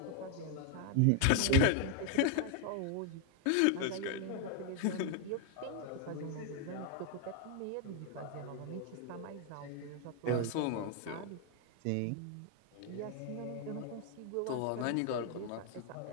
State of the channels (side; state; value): both; different; correlation 0.00